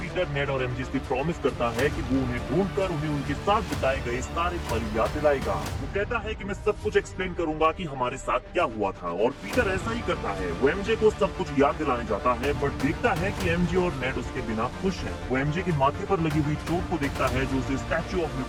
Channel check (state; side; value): identical; both; correlation 1.00